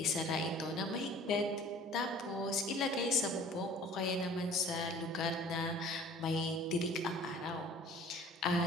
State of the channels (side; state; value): both; normal; correlation 0.48